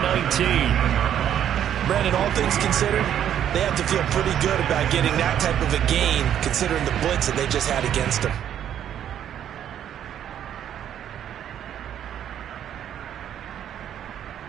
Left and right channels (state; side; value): quieter; left; 10.1 dB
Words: Brandon, all things considered, they have to feel pretty good about getting that type of a gain, considering the blitz that they just had against them.